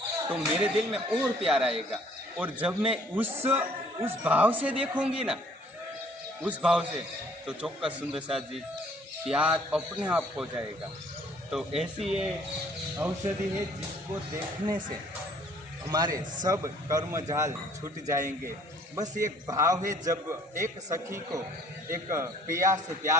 तो मेरे दिल में और प्यार आएगा। और जब मैं उस भाव से देखूंगी ना, उस भाव से, तो चौक्कस सुंदर सा जी प्यार अपने आप हो जाएगा। तो ऐसी ये औषधि है जिसको देखने से हमारे सब कर्म जाल छूट जाएंगे। बस एक भाव है, जब एक सखी को एक पिया से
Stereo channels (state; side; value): normal; both; correlation 0.58